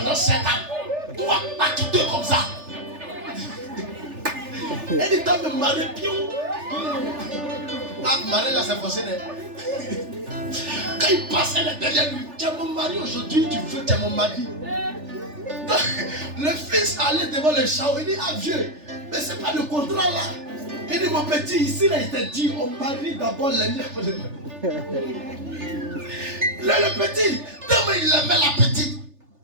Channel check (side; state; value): left; late; 3.4 ms